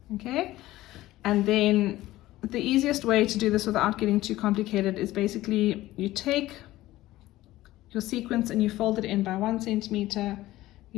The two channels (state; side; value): quieter; right; 16.4 dB